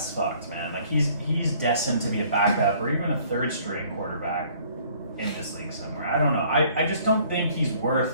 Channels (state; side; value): inverted; both; correlation -0.58